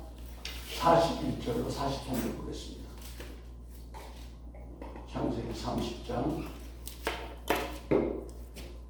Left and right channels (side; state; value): both; identical; correlation 1.00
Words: 41절로 43절 보겠습니다. 창세기 30장